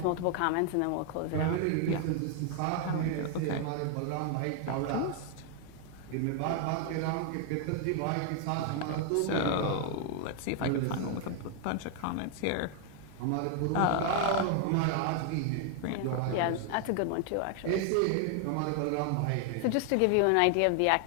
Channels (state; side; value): different; both; correlation 0.00